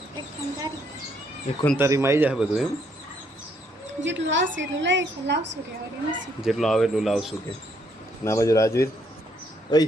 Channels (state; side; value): normal; both; correlation 0.71